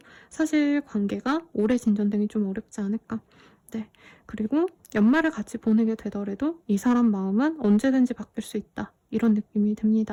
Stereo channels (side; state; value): both; identical; correlation 1.00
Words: 사실 관계가 오래 진전되기 좀 어렵지 않을까. 네. 그리고 연말을 같이 보내게 되더라도 이 사람 마음은 언제든지 바뀔 수 있다. 이런 느낌이